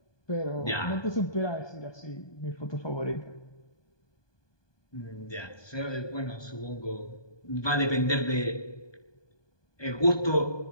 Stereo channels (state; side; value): late; right; 1.2 ms